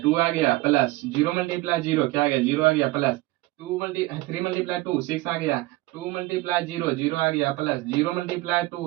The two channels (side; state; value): left; quieter; 19.7 dB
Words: 2 आ गया, प्लस 0 मल्टीप्लाई 0 क्या आ गया 0 आ गया, प्लस 3 मल्टीप्लाई 2 6 आ गया, 2 मल्टीप्लाई 0 0 आ गया, प्लस 0 मल्टीप्लाई